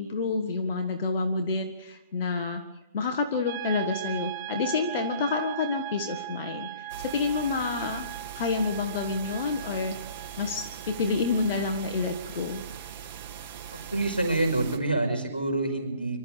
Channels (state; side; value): inverted; both; correlation -0.53